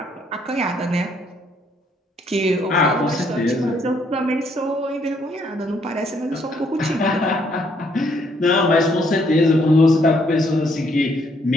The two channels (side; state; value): both; normal; correlation 0.69